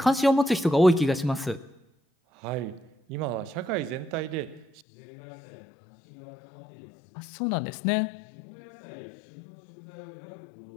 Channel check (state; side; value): drops out; right; at 4.8 s